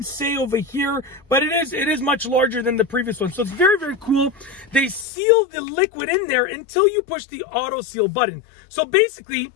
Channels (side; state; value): right; drops out; at 5.1 s